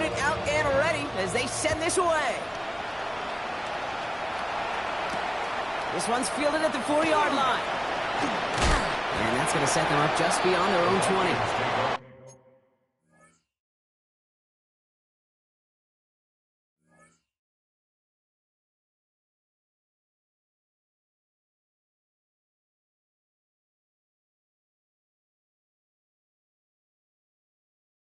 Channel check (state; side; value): identical; both; correlation 1.00